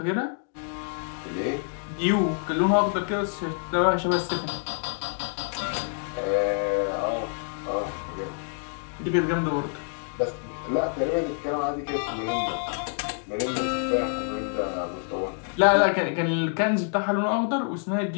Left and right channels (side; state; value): right; silent; 60 dB below the other